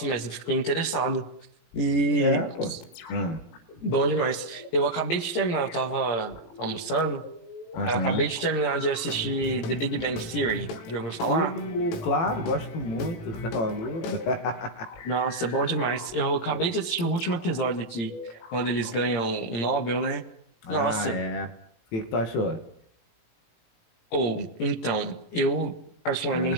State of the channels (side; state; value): right; late; 17 ms